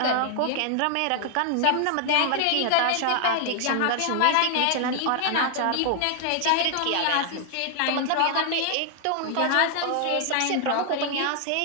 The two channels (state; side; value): different; both; correlation 0.00